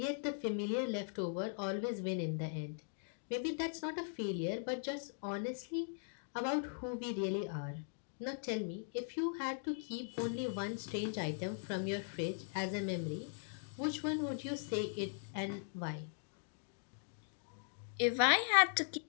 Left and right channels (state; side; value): silent; right; digital silence